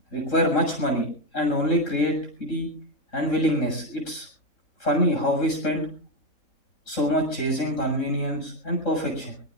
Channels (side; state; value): right; late; 3.7 ms